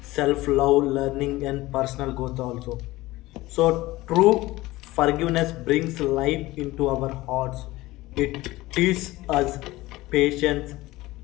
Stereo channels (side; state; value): right; quieter; 18.7 dB